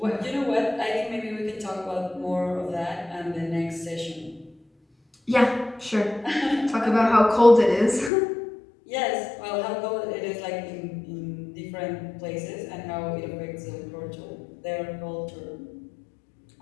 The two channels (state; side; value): drops out; right; at 8.1 s